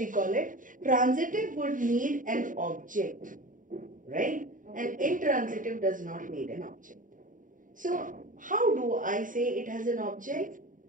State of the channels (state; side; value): late; left; 0.39 ms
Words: it. Transitive would need an object, right? And intransitive does not need an object. So how do I say it has an object?